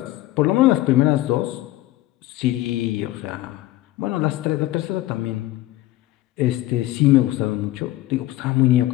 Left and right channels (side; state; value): right; quieter; 16.2 dB